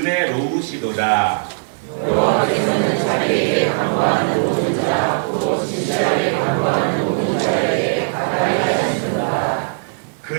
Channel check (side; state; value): left; silent; digital silence